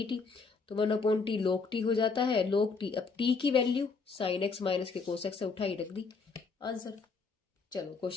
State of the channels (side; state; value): right; quieter; 4.6 dB